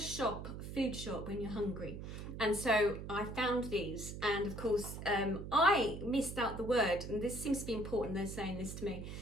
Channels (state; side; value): noise; right; hum, 8 dB below the sound